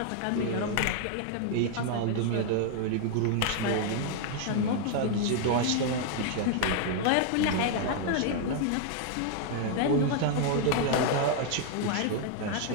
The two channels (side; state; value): both; different; correlation 0.00